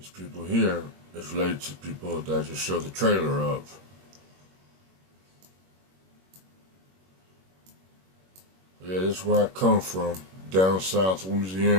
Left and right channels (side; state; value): left; late; 21 ms